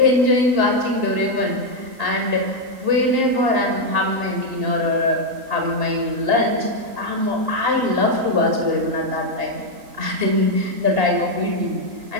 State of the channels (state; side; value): late; left; 3.8 ms